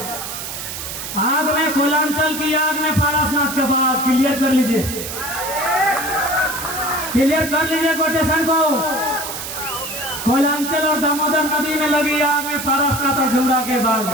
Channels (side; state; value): right; noise; hiss, 7 dB below the sound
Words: आग में कोयलांचल की आग में पारसनाथ का बाघ। क्लियर कर लीजिए, क्लियर कर लीजिए कोटेशन को। कोयलांचल और दामोदर नदी में लगी आग में पारसनाथ और झुमरा के बाघ